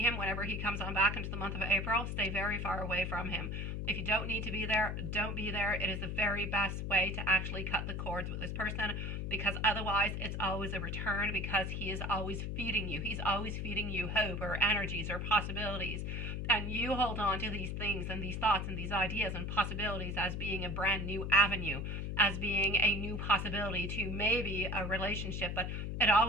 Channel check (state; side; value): noise; left; hum, 3 dB below the sound